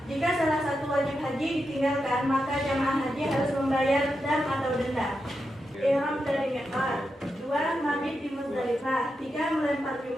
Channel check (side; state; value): both; normal; correlation 0.87